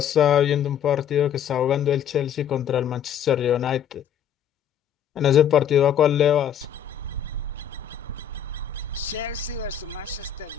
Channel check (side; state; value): right; quieter; 8.8 dB